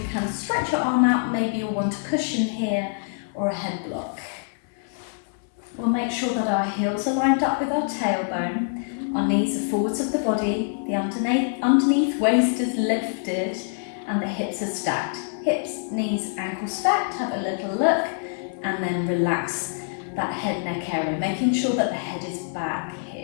can stretch your arm out, maybe you'll want a cushion here or a head block. We'll make sure that our heels are lined up with our tailbone, our knees are forwards of the body, the underneath waist is lifted and the hips are stacked. Hips, knees, ankles stacked, have a little look, and then relax that head neck area, making sure that the head is back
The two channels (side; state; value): right; silent; 62 dB below the other